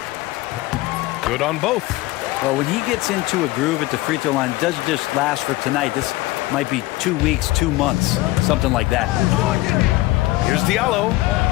Good on both. Well, when he gets into a groove at the free throw line, it doesn't just last for tonight. This might be 2 weeks, 2 months, something like that. Here's Diallo.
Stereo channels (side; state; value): right; quieter; 19.0 dB